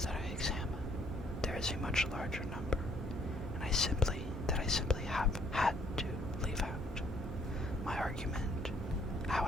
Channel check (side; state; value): both; normal; correlation 0.64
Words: that I examine, there is a much larger number, and I simply have had to leave out. My argument,